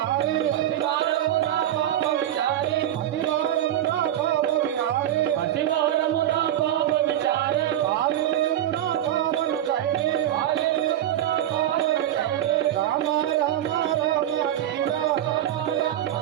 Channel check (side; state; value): left; quieter; 11.9 dB